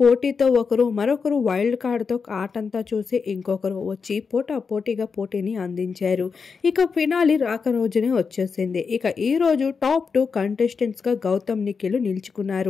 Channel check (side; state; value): right; quieter; 5.4 dB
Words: ఒకరు, మరొకరు వైల్డ్ కార్డ్తో ఆటంతా చూసి ఇంకొకరు వచ్చి పోటాపోటీగా పోటీని అందించారు. ఇక ఫినాలి రాక రోజునే వచ్చేసింది. ఇక ఈ రోజు టాప్ 2 కంటెస్టెంట్స్గా గౌతమ్, నిఖిల్